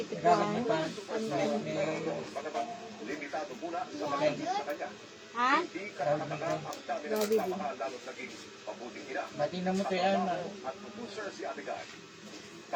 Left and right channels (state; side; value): identical; both; correlation 1.00